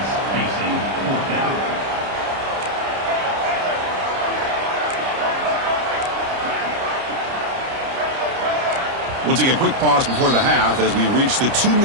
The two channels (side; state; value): left; late; 30 ms